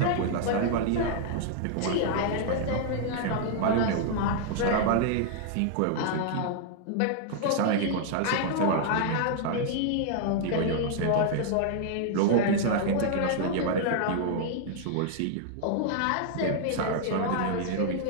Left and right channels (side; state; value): both; different; correlation -0.01